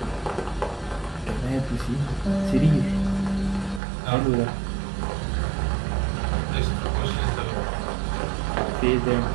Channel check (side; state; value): left; drops out; at 3.8 s